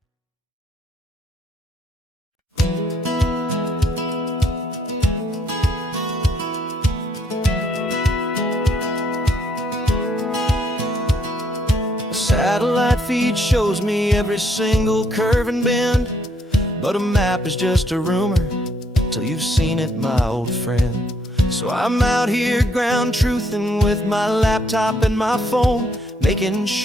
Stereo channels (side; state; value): both; normal; correlation 0.70